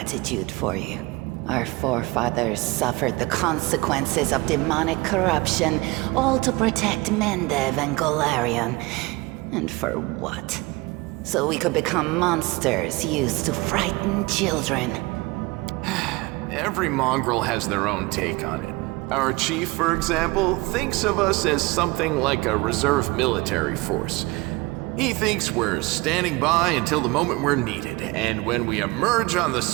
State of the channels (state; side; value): quieter; left; 23.3 dB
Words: for you. Our forefathers suffered the consequences of demonic corruption, all to protect Mendev and Golarion. And for what? So we could become monsters used to frighten children. Every mongrel has their own take on it. Our chief, for example, thinks of us as something like a reserve military force. He thinks we're standing by until the moment we're needed, and when we emerge on the